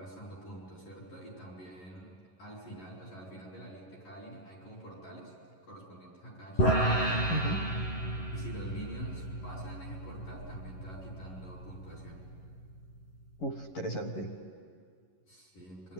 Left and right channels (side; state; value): right; late; 11 ms